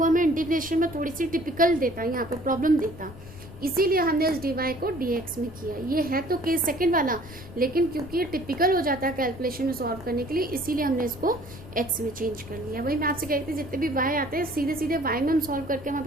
हमें इंटीग्रेशन में थोड़ी सी टिपिकल देता, यहाँ पर प्रॉब्लम देता, इसीलिए हमने इस dy को dx में किया। ये है तो केस सेकंड वाला, लेकिन क्योंकि ये टिपिकल हो जाता है कैलकुलेशन में सॉल्व करने के लिए, इसीलिए हमने इसको x में चेंज कर लिया। वही मैं आपसे कहती थी, जितने भी y आते हैं सीधे सीधे y में हम सॉल्व करके, हमारे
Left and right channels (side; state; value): left; noise; rumble, 16 dB below the sound